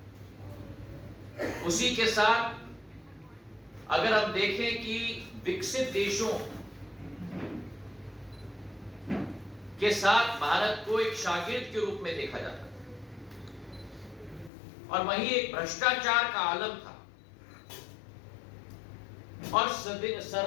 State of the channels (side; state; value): right; drops out; at 14.5 s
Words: उसी के साथ अगर हम देखें कि विकसित देशों के साथ भारत को एक शागिर्द के रूप में देखा जाता था, और वहीं एक भ्रष्टाचार का आलम था, और